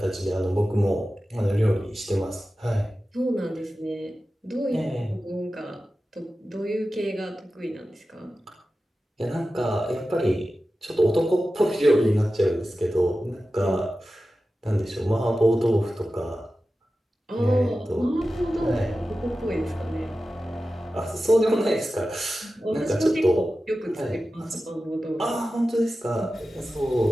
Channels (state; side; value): normal; both; correlation 0.94